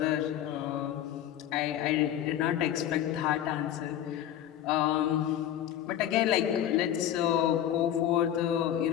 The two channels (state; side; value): quieter; right; 11.1 dB